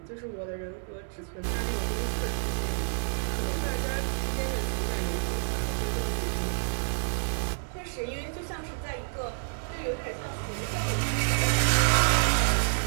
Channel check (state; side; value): silent; left; 59 dB below the other